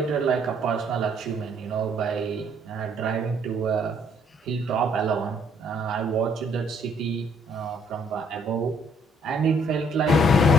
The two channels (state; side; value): normal; both; correlation 0.65